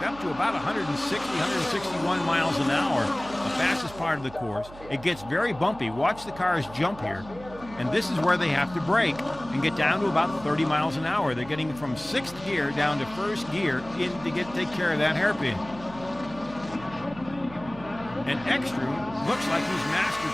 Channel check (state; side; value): noise; right; hum, 17 dB below the sound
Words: up to about 160, 161 miles an hour, the fastest part of the course. It gets very bumpy. Watch the cars jump here. And this is where they have to brake and get down to about 30 miles an hour. They're getting from sixth gear down to first gear to take care of that hairpin. And Ekstrom looks like he's mastered